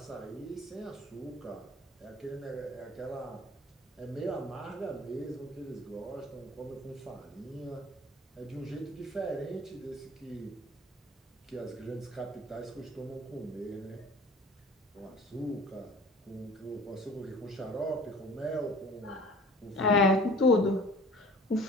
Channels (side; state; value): both; normal; correlation 0.46